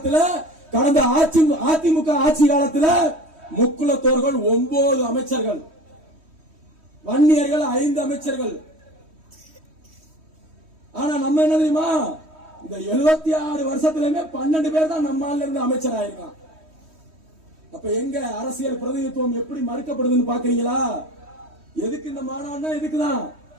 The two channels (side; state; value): left; late; 3.1 ms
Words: கடந்த அதிமுக ஆட்சி காலத்துல முக்குலத்தோர்கள் 9 அமைச்சர்கள், வன்னியர்கள் 5 அமைச்சர்கள். ஆனா நம்ம என்ன தெரியுமா? இந்த 76 வருஷத்திலுமே 12 பேர் தான் நம்மால இருந்து அமைச்சர் ஆயிருக்கான். அப்ப எங்க அரசியல் பிரதிநிதித்துவம் எப்படி மறுக்கப்படுதுன்னு பாக்குறீங்களா? எதுக்கு இந்த மாநாடுனா? இதுக்குதான்.